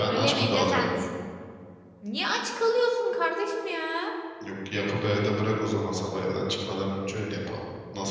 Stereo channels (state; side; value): identical; both; correlation 1.00